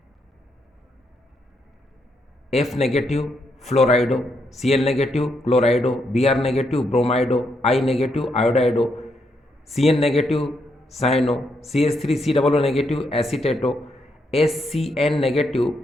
F negative fluorido, Cl negative chlorido, Br negative bromido, I negative iodido, Cn negative cyano, CH3COO negative acetato, SCN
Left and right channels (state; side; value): normal; both; correlation 0.78